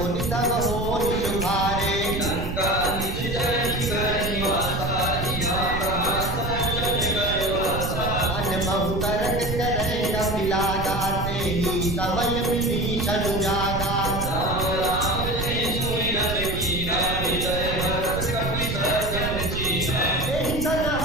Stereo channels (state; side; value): noise; right; rumble, 4 dB below the sound